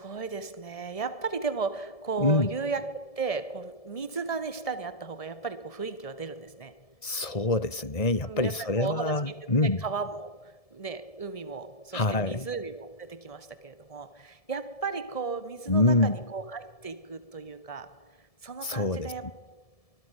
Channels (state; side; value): late; right; 1.7 ms